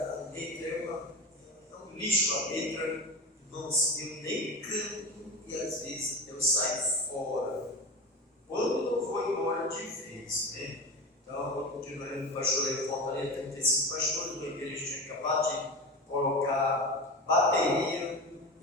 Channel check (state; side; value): normal; both; correlation 0.27